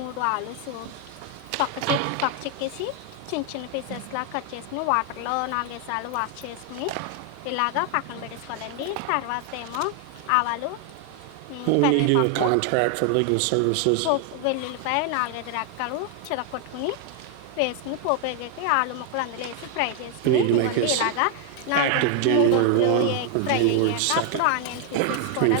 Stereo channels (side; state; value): both; different; correlation 0.00